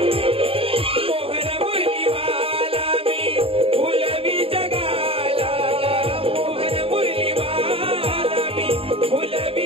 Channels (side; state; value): left; late; 0.27 ms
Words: मोहन मुरलीवाला मी फुलवी जगाला मोहन मुरलीवाला मी